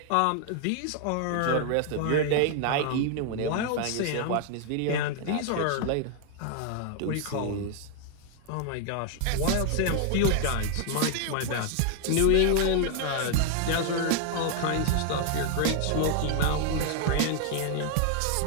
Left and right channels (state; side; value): different; both; correlation 0.00